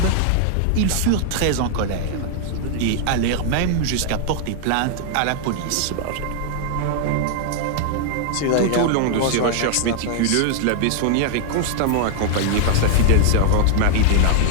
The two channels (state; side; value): different; both; correlation 0.00